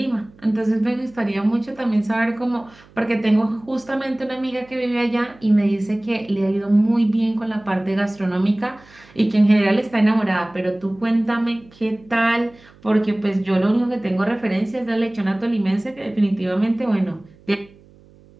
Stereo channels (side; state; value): right; noise; hum, 26 dB below the sound